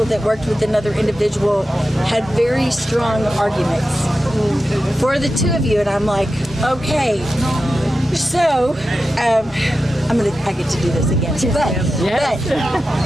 that worked with another individual had very strong arguments for the two of you, and I'm like, okay, so I get to do this again, but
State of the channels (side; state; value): both; normal; correlation 0.91